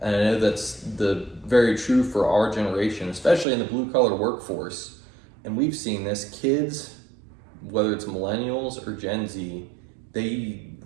And I know that's very true for our generation, especially in the blue-collar workforce. And we've seen this, kids, whether it's millennials or Gen Z, and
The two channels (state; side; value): drops out; left; at 3.5 s